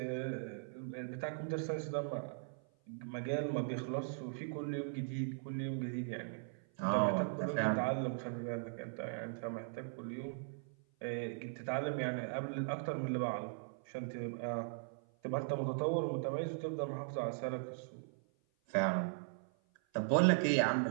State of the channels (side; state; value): left; silent; 52 dB below the other